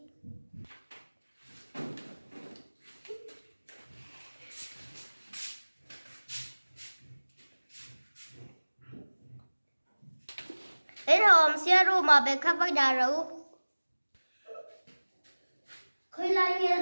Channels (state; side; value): inverted; both; correlation -1.00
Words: Đến hôm xưa room mà bé khắp với đà rấu. Khơi lại